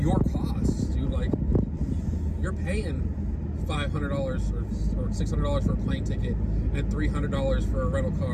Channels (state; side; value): identical; both; correlation 1.00